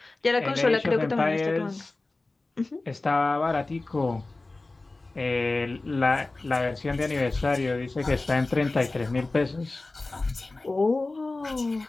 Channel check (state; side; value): quieter; right; 3.2 dB